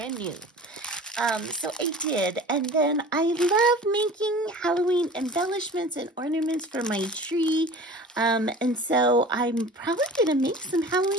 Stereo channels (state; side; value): normal; both; correlation 0.41